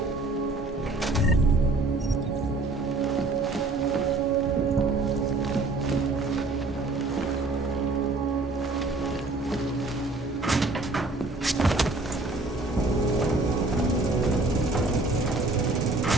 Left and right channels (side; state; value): left; quieter; 3.2 dB